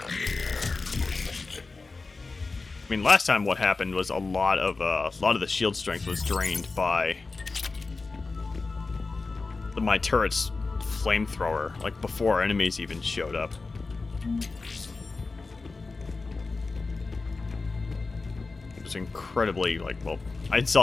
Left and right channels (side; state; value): right; quieter; 3.9 dB